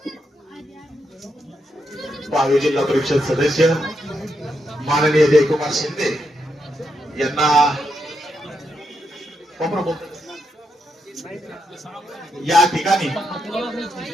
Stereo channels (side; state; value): both; normal; correlation 0.82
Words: पालघर जिल्हा परिषद सदस्य माननीय जयकुमार शिंदे यांना या ठिकाणी